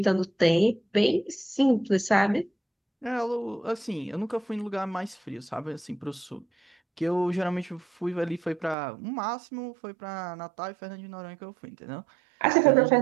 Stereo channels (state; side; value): drops out; left; at 8.8 s